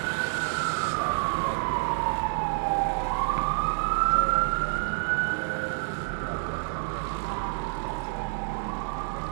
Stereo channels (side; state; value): left; silent; digital silence